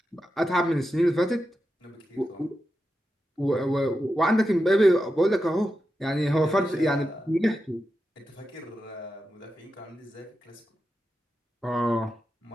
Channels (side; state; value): both; normal; correlation 0.89